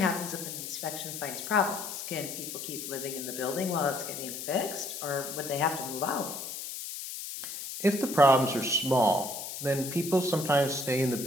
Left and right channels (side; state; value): left; noise; hiss, 7 dB below the sound